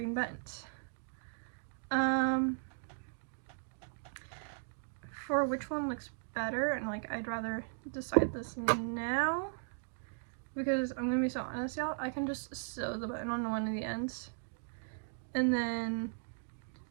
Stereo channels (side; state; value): left; silent; digital silence